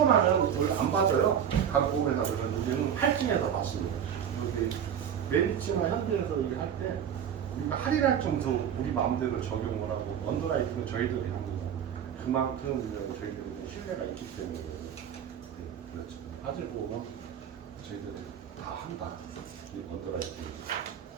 나면 원래 안 받아요. 각 보험회사들은 우리는 할증해서 받습니다. 여기 메리츠나 현대에서 이렇게 할 때 우리가 할인할 정도 우리 마음대로 적용을 하고 언더라이팅은 저희들이 합니다. 그만큼 저희들이 신뢰가 있기 때문에 그렇죠. 화재보험은 저희들이 다 한다. 이 언더라이팅.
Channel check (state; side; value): quieter; left; 8.7 dB